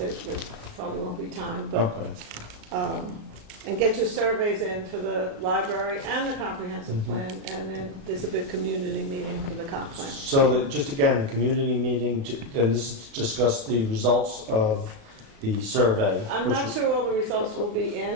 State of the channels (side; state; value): left; late; 36 ms